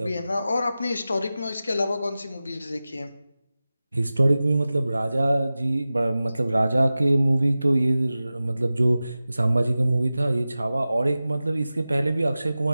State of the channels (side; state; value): both; inverted; correlation -0.95